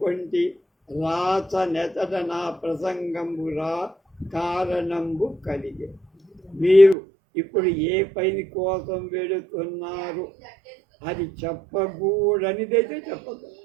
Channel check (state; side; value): drops out; left; at 7.0 s